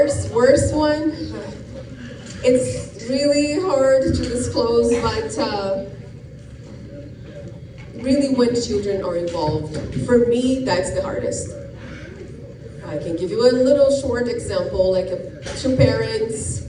worst one? It's really hard to disclose, but really when children are involved, for me, that's the hardest. I can give you a little short example, like 2 parents,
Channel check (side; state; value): both; identical; correlation 1.00